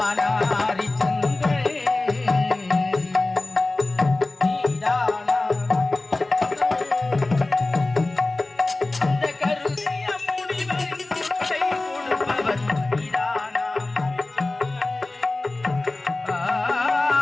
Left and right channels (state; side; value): quieter; right; 3.0 dB